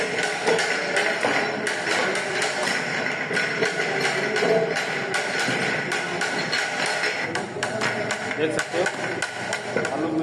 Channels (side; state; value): both; identical; correlation 1.00